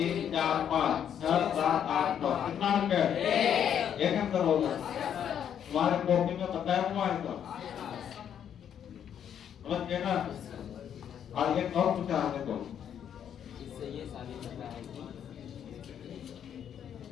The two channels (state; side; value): quieter; right; 9.0 dB